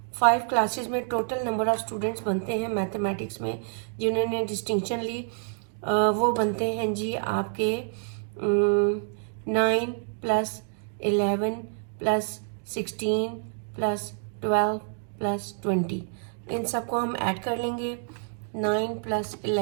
5 क्लासेस में टोटल नंबर ऑफ स्टूडेंट्स बनते हैं मैथमेटिक्स में जिन्होंने डिस्टिंक्शन ली, वो बनते हैं जी आपके 9 + 11 + 16 + 12 + 20। इन सबको हम ऐड कर लेंगे, 9 +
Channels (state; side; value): silent; left; digital silence